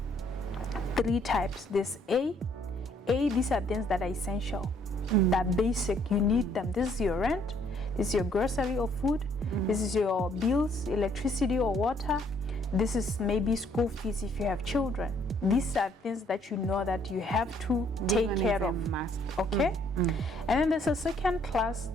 3 types. There's A, these are things that are essential, that are basic, you need them. This is your rent, this is your grocery or food, this is your bills, electricity or water, this is maybe school fees if you have children. These are things that you know that you have to take care of. Okay? And then there's a second class,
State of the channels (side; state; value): both; normal; correlation 0.65